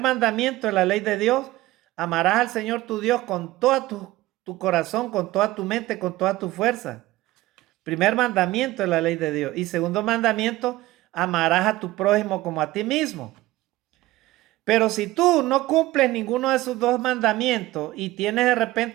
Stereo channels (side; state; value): left; quieter; 17.4 dB